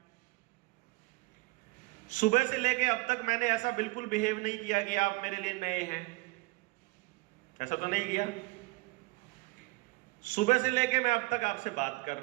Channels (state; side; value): quieter; left; 23.6 dB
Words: सुबह से लेके अब तक मैंने ऐसा बिल्कुल बिहेव नहीं किया कि आप मेरे लिए नए हैं, ऐसा तो नहीं किया। सुबह से लेके मैं अब तक आपसे बात कर